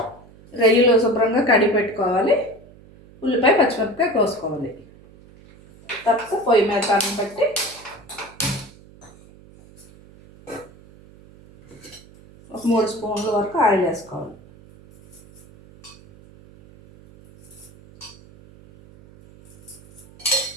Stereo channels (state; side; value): noise; right; hum, 23 dB below the sound